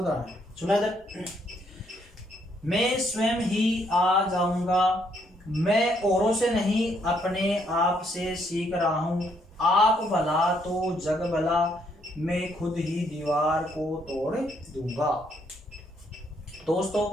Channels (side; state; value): both; normal; correlation 0.71